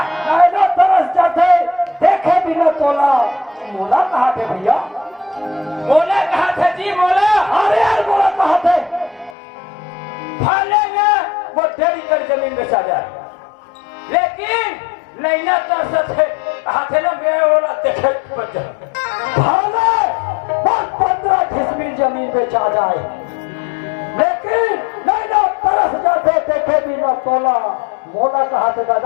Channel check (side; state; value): right; drops out; at 9.3 s